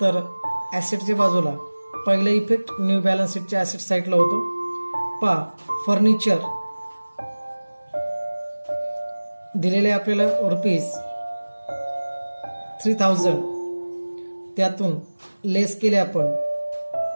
तर ॲसेटच्या बाजूला. पहिला इफेक्ट न्यू बॅलन्स शीटच्या ॲसेट साईडला होतो. पहा फर्निचर दिलेले आपल्याला रुपीज 3,000. त्यातून लेस केले आपण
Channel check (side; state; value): both; inverted; correlation -1.00